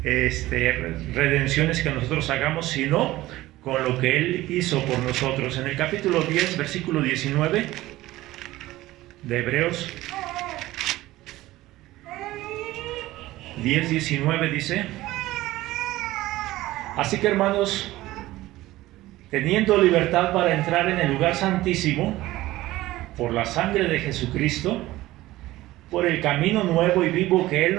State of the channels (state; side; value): quieter; left; 17.0 dB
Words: redenciones que nosotros hagamos, sino con lo que Él hizo por nosotros. En el capítulo 10, versículo 19 de Hebreos 10:19 dice: así que, hermanos, teniendo libertad para entrar en el lugar santísimo por la sangre de Jesucristo, por el camino nuevo y vivo que Él